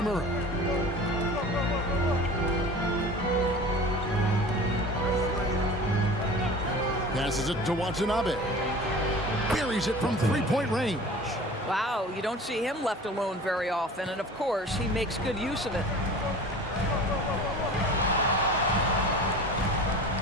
Passes it to Watanabe. Buries it from three-point range. Wow, you don't see him left alone very often, and of course, he makes good use of it.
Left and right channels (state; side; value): normal; both; correlation 0.39